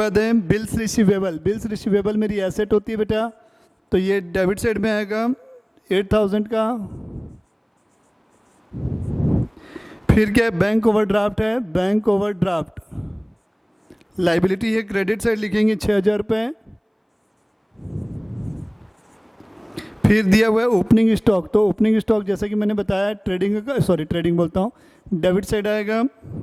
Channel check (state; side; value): identical; both; correlation 1.00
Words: है बिल्स रिसीवेबल। बिल्स रिसीवेबल मेरी एसेट होती है बेटा, तो ये डेबिट साइड में आएगा 8,000 का। फिर क्या है? बैंक ओवरड्राफ्ट है। बैंक ओवरड्राफ्ट लाइबिलिटी है, क्रेडिट साइड लिखेंगे 6,000 रुपये। फिर दिया हुआ है ओपनिंग स्टॉक। तो ओपनिंग स्टॉक जैसा कि मैंने बताया ट्रेडिंग बोलता हूँ, डेबिट साइड आएगा